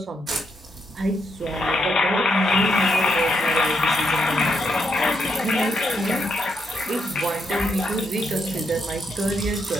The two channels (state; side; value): normal; both; correlation 0.78